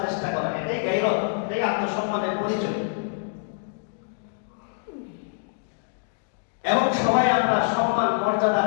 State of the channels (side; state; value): right; silent; digital silence